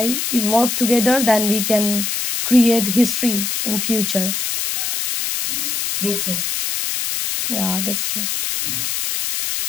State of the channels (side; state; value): left; noise; hiss, 1 dB below the sound